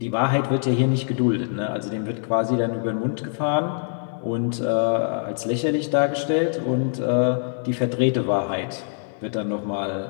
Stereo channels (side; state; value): right; silent; 63 dB below the other